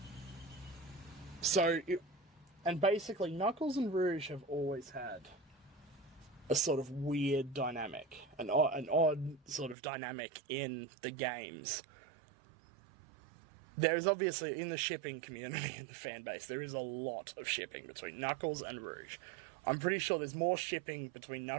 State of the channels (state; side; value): drops out; left; at 9.8 s